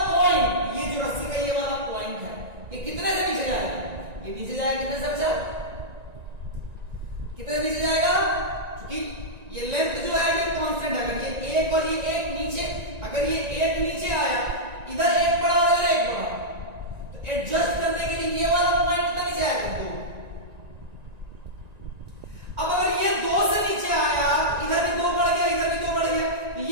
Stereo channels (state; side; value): late; left; 1.9 ms